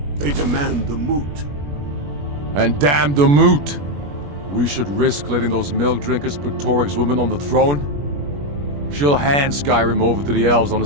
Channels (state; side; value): late; left; 21 ms